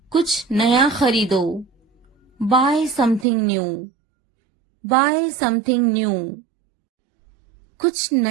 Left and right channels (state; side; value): drops out; left; at 3.2 s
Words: कुछ नया खरीदो, buy something new, buy something new. कुछ